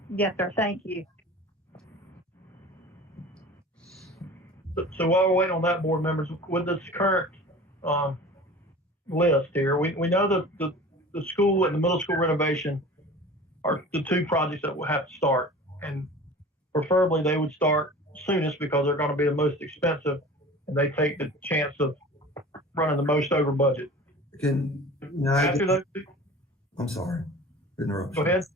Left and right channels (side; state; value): both; normal; correlation 0.40